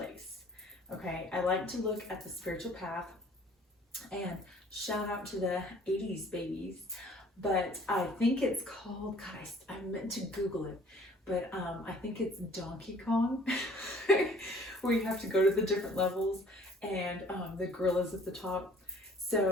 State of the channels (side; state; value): both; normal; correlation 0.55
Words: Okay, I like to look at the spiritual path, and shout out to the 80s babies, but I think it's called, God, I meant to Google it, but I think it's Donkey Kong, where you have to go to the different levels, and the gorilla's at the top.